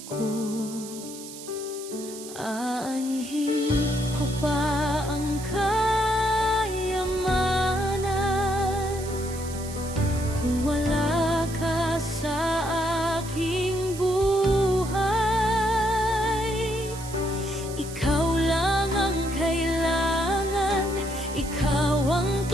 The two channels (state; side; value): noise; right; hiss, 13 dB below the sound